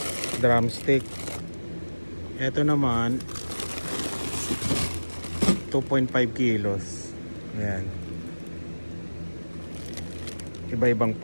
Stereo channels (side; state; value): both; inverted; correlation -1.00